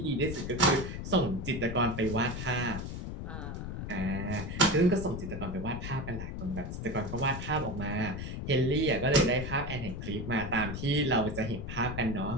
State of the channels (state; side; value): noise; left; rumble, 6 dB below the sound